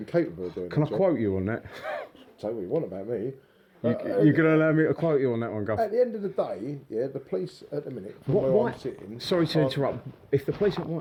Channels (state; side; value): identical; both; correlation 1.00